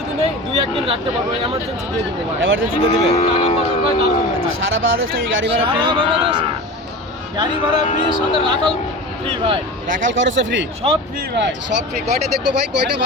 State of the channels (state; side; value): normal; both; correlation 0.31